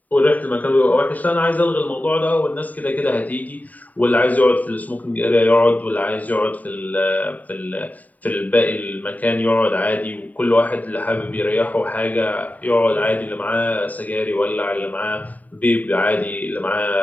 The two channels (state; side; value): late; right; 0.075 ms